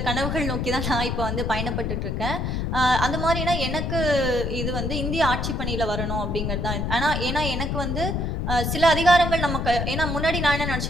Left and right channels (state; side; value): noise; left; rumble, 1 dB below the sound